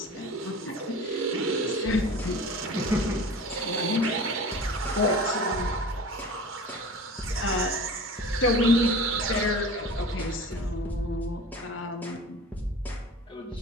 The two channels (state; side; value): normal; both; correlation 0.38